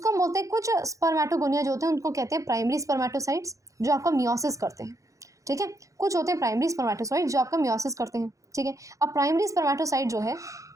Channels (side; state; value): left; late; 0.16 ms